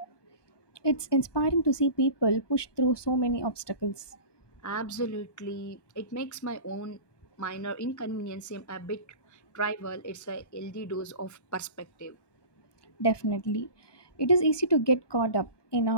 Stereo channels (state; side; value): late; right; 1.2 ms